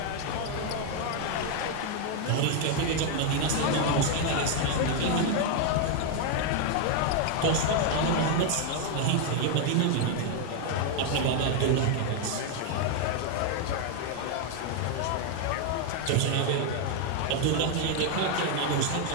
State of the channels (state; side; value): different; both; correlation 0.01